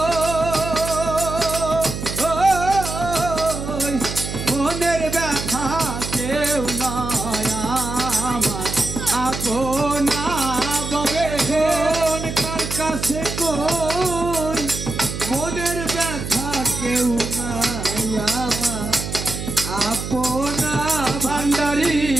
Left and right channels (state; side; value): noise; right; hum, 6 dB below the sound